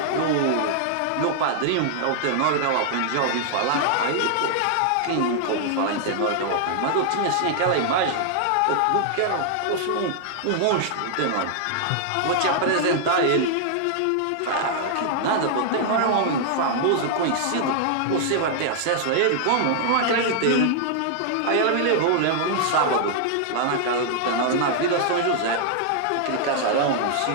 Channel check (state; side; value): different; both; correlation -0.01